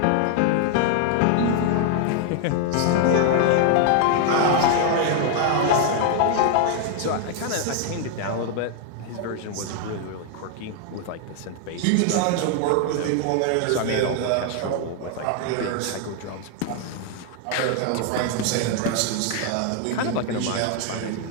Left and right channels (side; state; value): both; different; correlation 0.00